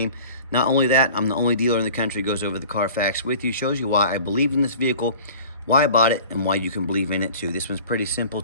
Not only that, I'm the only dealer in the country who goes over the Carfax with you, shows you why I believe in this vehicle, why I bought it, and why you can believe in it too. This one's pretty simple,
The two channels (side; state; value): both; inverted; correlation -0.43